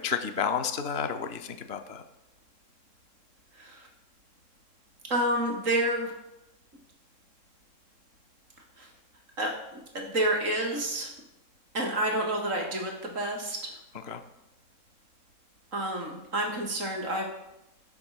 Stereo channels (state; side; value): late; left; 3.8 ms